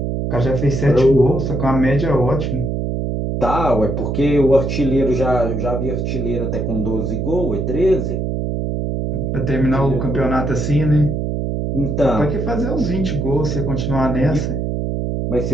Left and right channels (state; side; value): noise; right; hum, 1 dB below the sound